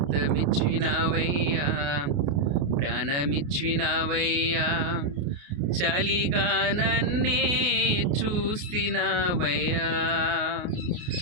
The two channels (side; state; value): left; late; 28 ms